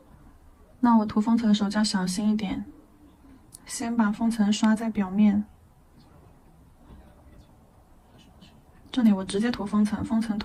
那我涂封层的时候就要小心一点，先把封层刷在表面。这里我直接涂封层，封层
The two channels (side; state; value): both; identical; correlation 1.00